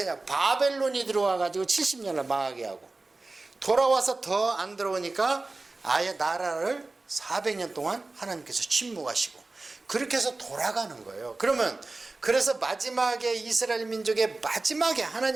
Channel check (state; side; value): quieter; left; 3.3 dB